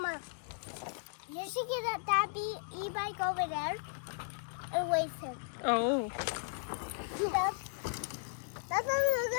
you should get that e-bike over there and wait him. Oh. That's a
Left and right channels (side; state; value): right; silent; digital silence